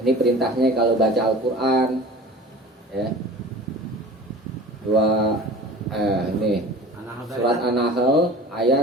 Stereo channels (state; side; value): normal; both; correlation 0.41